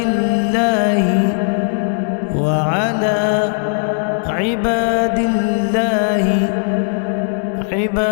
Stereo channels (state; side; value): silent; right; digital silence